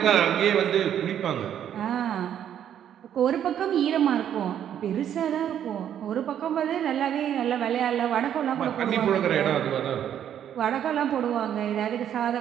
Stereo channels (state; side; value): quieter; left; 9.9 dB